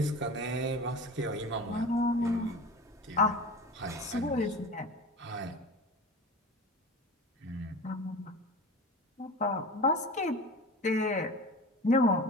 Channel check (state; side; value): normal; both; correlation 0.33